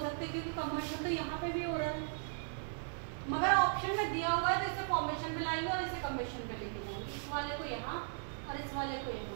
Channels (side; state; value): left; silent; digital silence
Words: सकते हैं, क्योंकि कंबशन तो यहाँ पे भी हो रहा है, मगर ऑप्शन में दिया हुआ है तो इसे फॉर्मेशन पे लाएंगे और इसे कंबशन पे लेके जाएंगे। इस वाले को यहाँ और इस वाले को